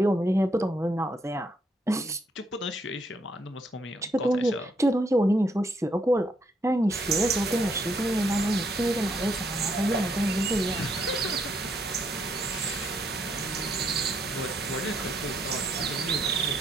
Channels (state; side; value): normal; both; correlation 0.74